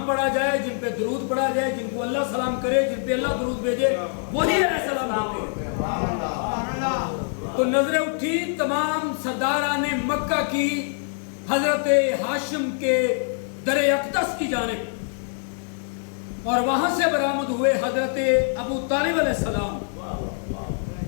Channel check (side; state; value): right; silent; 58 dB below the other